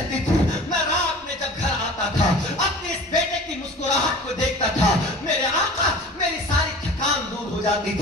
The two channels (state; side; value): normal; both; correlation 0.41